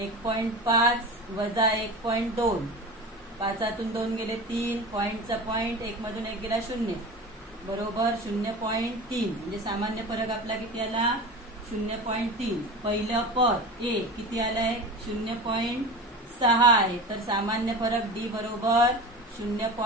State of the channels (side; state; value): both; normal; correlation 0.31